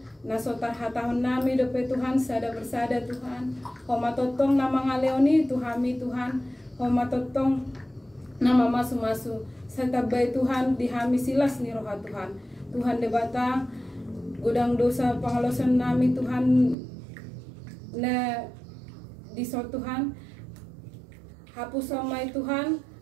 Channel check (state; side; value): drops out; left; at 16.8 s